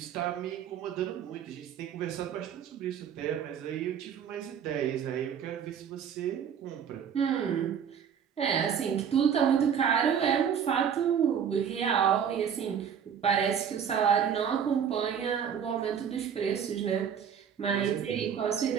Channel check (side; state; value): left; quieter; 7.9 dB